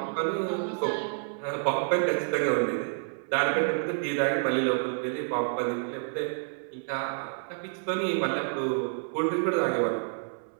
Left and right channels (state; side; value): silent; left; 59 dB below the other